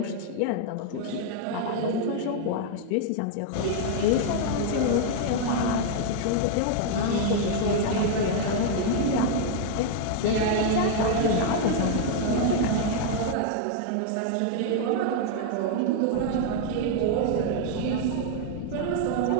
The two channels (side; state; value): both; different; correlation 0.00